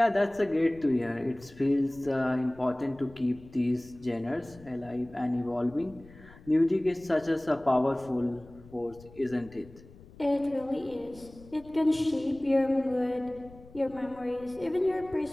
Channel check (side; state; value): left; noise; rumble, 21 dB below the sound